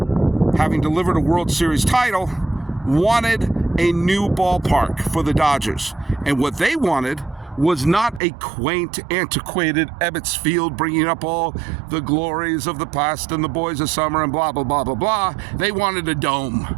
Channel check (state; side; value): drops out; left; at 8.2 s